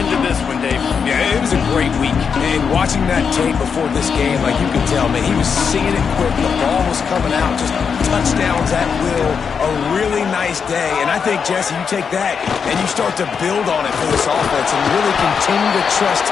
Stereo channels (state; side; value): quieter; right; 6.3 dB